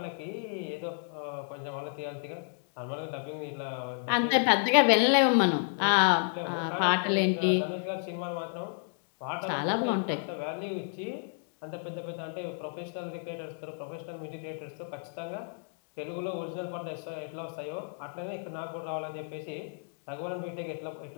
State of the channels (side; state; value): right; silent; digital silence